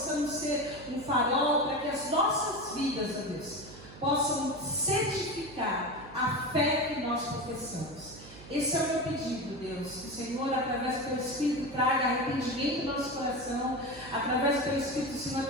ser um farol, para que as nossas vidas, ó Deus, possam certificar a fé que nós professamos. Esse é o meu pedido, Deus, que o Senhor, através do Teu Espírito, traga arrependimento no nosso coração, através do Teu Espírito, o Senhor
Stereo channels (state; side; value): noise; right; hum, 18 dB below the sound